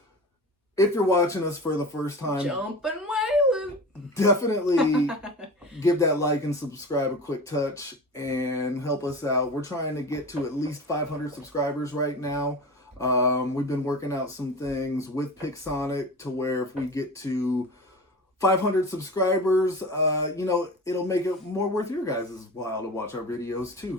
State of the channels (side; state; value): both; normal; correlation 0.32